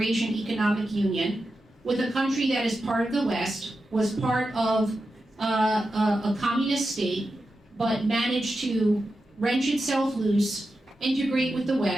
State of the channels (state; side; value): normal; both; correlation 0.90